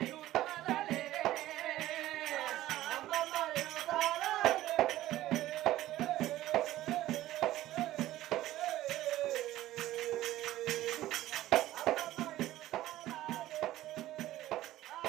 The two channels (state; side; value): quieter; left; 15.0 dB